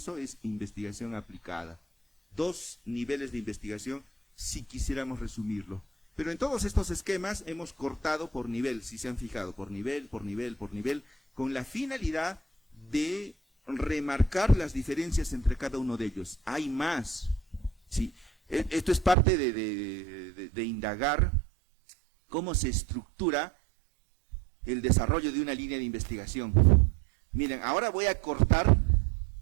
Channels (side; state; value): left; drops out; at 19.2 s